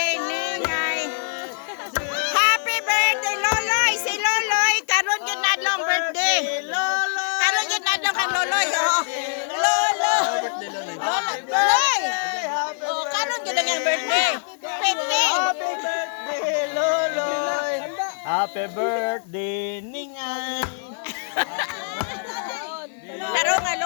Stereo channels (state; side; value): silent; right; digital silence